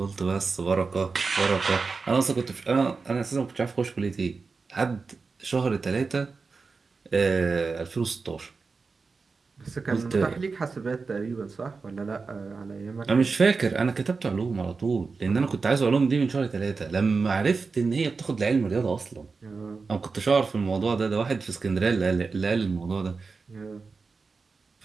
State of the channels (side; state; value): left; quieter; 4.5 dB